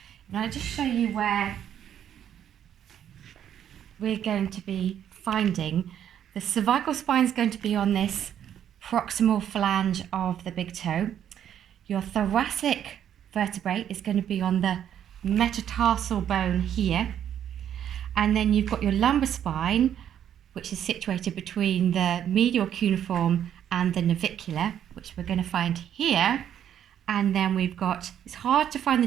And I'll just show you where we're going to be finding. The cervical spine is going to be on this proximal flange of the big toe. Your thoracic vertebrae is going to be on the metatarsal bone here. And then you've got your lumbar spine, which is situated between the medial cuneiform and the navicular, which we're going to find here. And then we've got, it's hard to find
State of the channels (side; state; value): left; quieter; 9.8 dB